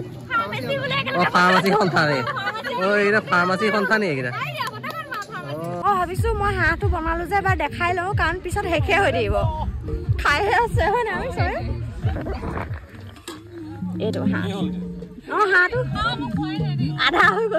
ফাৰ্মাচী সন্থা নে এইকেইটা ফাৰ্মাচী সন্থা নি এইকেইটা ভাবিছো মই হাঁহটো বনালো যে এবাৰ দেখাই লওঁ কাৰণ পিছত শেষে হৈ থাকিব খাইহে আছে হয় নাই এইটো হাঁহ হাঁহটো আধা হৈ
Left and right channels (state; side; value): identical; both; correlation 1.00